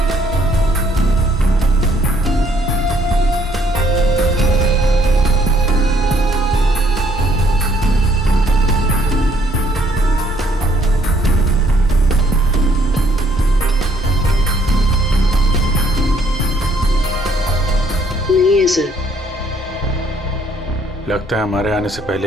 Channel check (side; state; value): both; normal; correlation 0.66